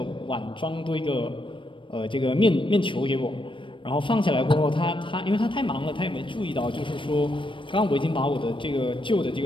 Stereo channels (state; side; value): late; right; 0.25 ms